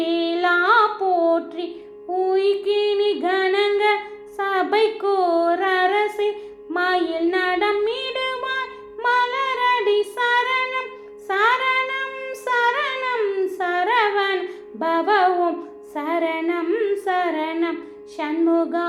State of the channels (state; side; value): identical; both; correlation 1.00